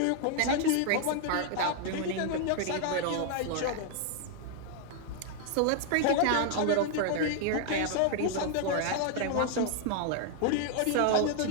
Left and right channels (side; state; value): both; different; correlation 0.00